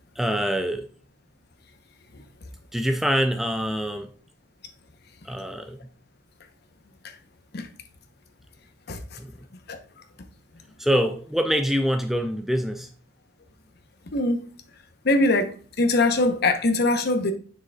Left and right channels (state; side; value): normal; both; correlation 0.58